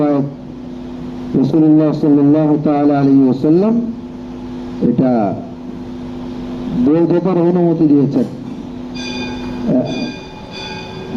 রাসূলুল্লাহ সাল্লাল্লাহু তাআলা আলাইহি ওয়াসাল্লাম এটা বৈধতার অনুমতি দিয়েছেন।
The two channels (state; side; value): identical; both; correlation 1.00